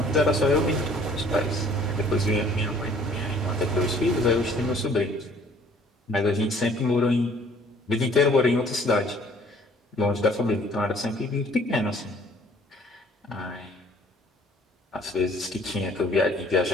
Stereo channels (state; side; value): normal; both; correlation 0.56